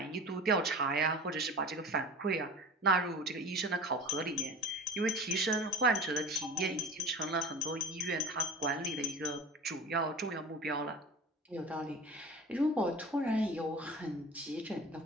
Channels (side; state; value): both; normal; correlation 0.36